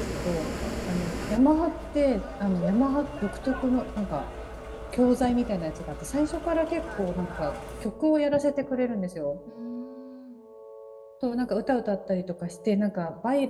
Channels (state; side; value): identical; both; correlation 1.00